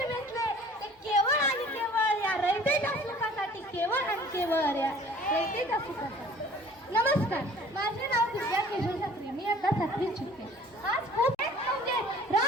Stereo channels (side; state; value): both; normal; correlation 0.50